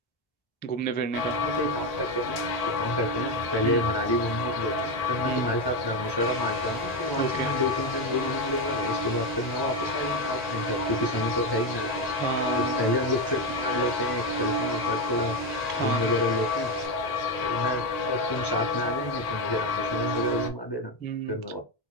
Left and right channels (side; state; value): right; late; 1.8 ms